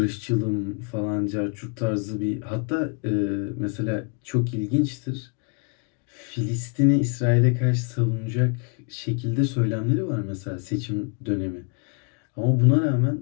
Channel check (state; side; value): quieter; right; 35.5 dB